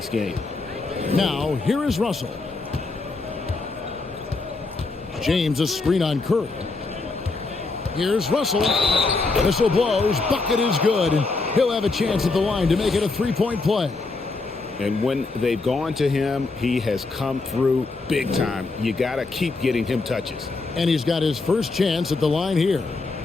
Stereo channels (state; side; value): quieter; right; 3.7 dB